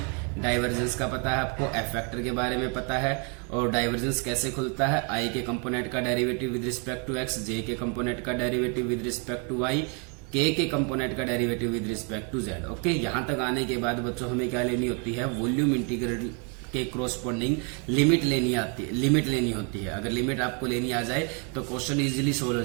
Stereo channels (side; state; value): left; quieter; 36.7 dB